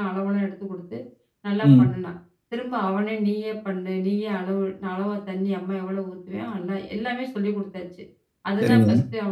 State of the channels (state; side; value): identical; both; correlation 1.00